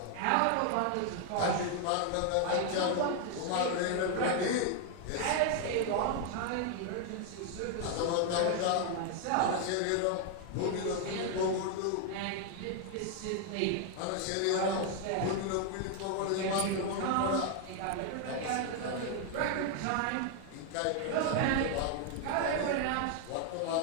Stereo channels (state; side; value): different; both; correlation 0.00